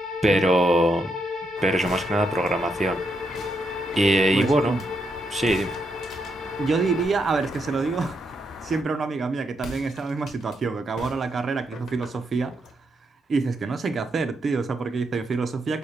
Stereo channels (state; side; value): normal; both; correlation 0.80